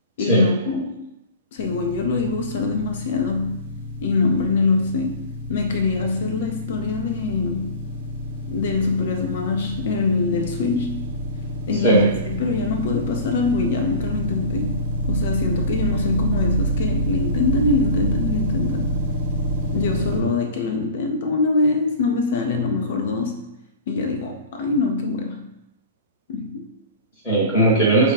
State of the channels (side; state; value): both; inverted; correlation -0.37